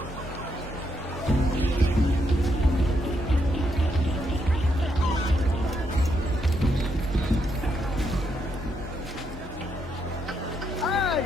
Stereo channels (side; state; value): both; normal; correlation 0.78